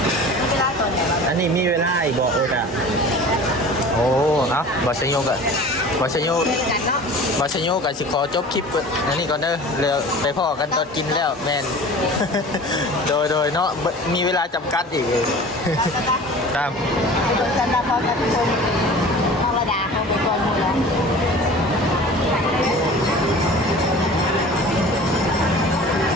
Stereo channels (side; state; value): both; normal; correlation 0.41